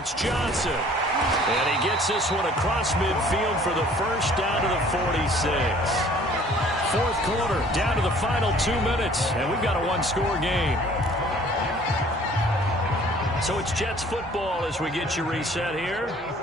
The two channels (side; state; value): both; normal; correlation 0.54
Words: Johnson. And he gets this one across midfield for the first down to the 46. 4th quarter, down to the final 2 minutes, and we've got a 1-score game. So it's Jets football as we get you reset here.